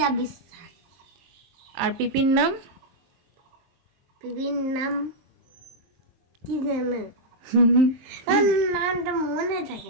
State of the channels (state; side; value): late; left; 23 ms